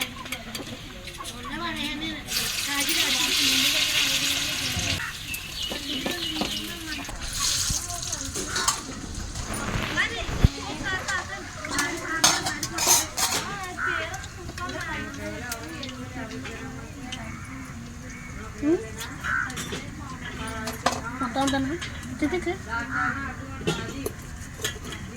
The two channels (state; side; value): identical; both; correlation 1.00